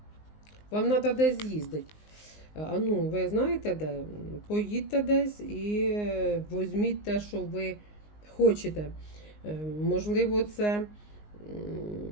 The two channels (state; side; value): late; right; 19 ms